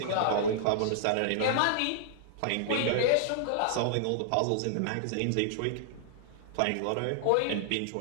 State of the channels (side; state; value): both; different; correlation -0.01